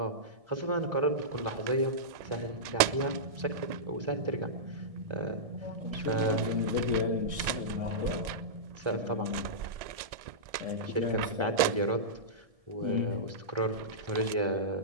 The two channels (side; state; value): left; late; 1.7 ms